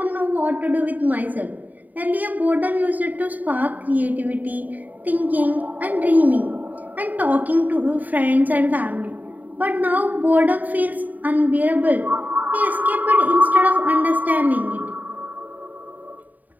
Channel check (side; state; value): left; late; 0.080 ms